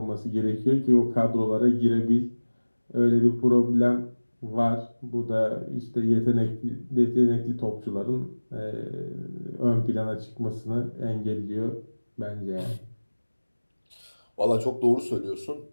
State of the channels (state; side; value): inverted; both; correlation -1.00